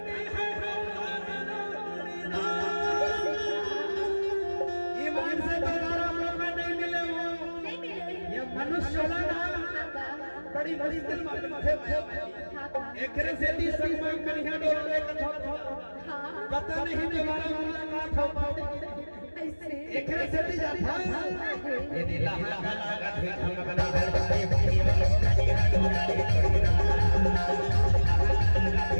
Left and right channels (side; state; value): both; inverted; correlation -1.00